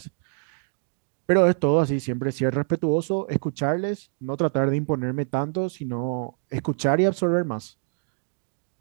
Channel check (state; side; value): silent; left; 60 dB below the other